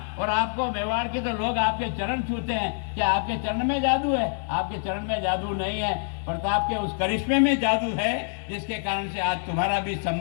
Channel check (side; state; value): right; silent; digital silence